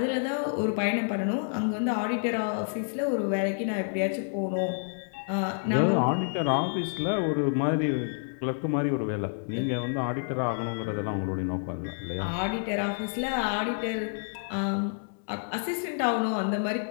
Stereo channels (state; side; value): silent; right; digital silence